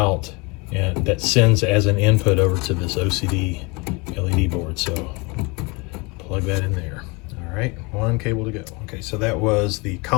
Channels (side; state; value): right; quieter; 28.1 dB